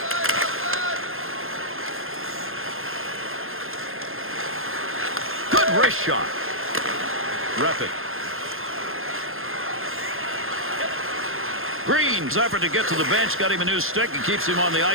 Good wrist shot. Rep it. Green's effort to get to the bench got him a new stick and keeps him on the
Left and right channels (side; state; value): left; late; 0.60 ms